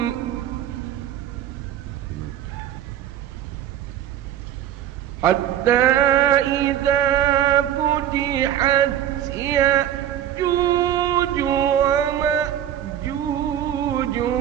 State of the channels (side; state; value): left; quieter; 11.0 dB